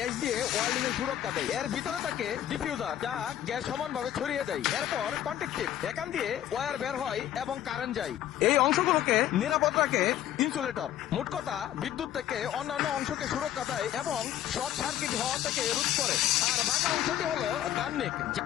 দিয়ে ওয়েল্ডিং এর সুরক্ষা দেয়। এর ভিতরে থাকে ডিফিউজার, যা গ্যাস সমানভাবে ছড়িয়ে দেয়। এরপর কন্ট্যাক্টিভ, এখান দিয়ে ওয়্যার বের হয় এবং কারেন্ট যায়। এই অংশগুলোকে নিরাপদ রাখে ইনসুলেটর। মোট কথা, বিদ্যুৎ থেকে অন্যান্য অংশকে সুরক্ষা দেয় এবং শর্ট সার্কিট হওয়া থেকে রোধ করে। আর বাঁকা অংশটি হলো গাননিক,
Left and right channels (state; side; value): quieter; right; 11.7 dB